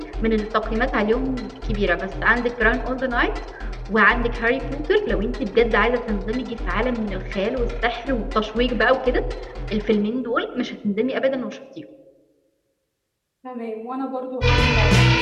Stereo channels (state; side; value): identical; both; correlation 1.00